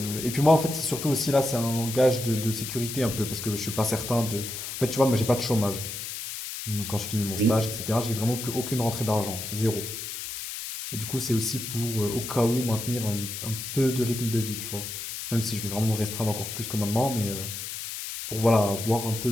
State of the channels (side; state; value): left; noise; hiss, 7 dB below the sound